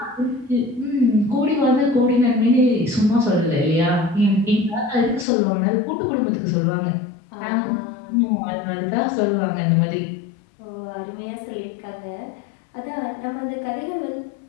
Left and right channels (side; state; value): right; drops out; at 5.2 s